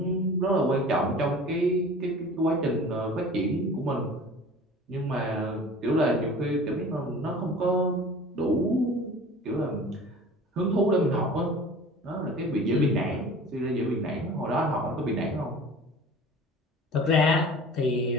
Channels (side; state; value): both; normal; correlation 0.42